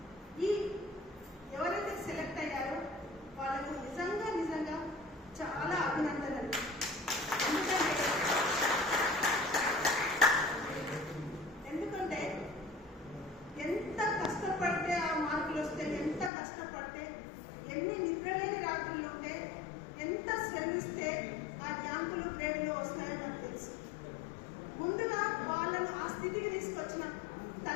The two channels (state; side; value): drops out; right; at 16.3 s